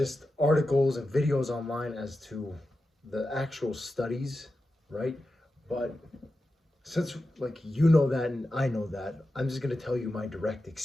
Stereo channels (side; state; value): both; normal; correlation 0.91